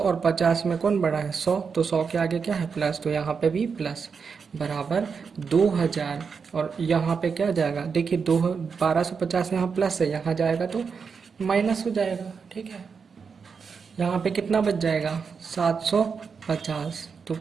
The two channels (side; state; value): left; quieter; 5.7 dB